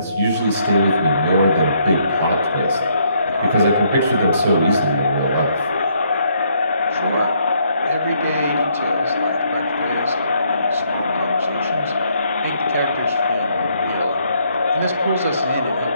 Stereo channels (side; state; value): both; inverted; correlation -0.70